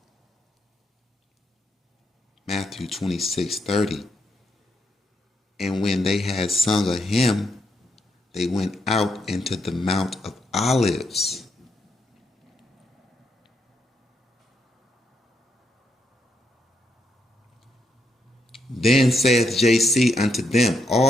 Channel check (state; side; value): normal; both; correlation 0.79